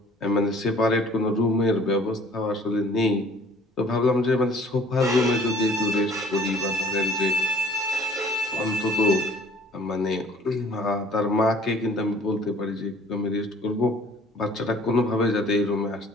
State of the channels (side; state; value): both; normal; correlation 0.54